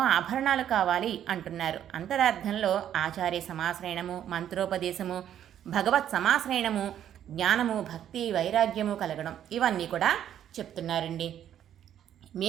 ఆభరణాలు కావాలి అంటున్నారు. అంతరార్థంలో ఆచార్య సమాశ్రయణము, మంత్రోపదేశము, భగవత్ సమాశ్రయణము, జ్ఞానము, భక్తి, వైరాగ్యము కలగడం, ఇవన్నీ కూడా చెప్తున్నారండి.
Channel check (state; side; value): quieter; left; 10.4 dB